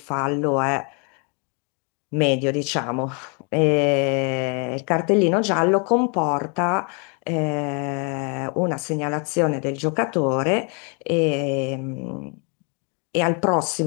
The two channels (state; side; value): quieter; right; 36.4 dB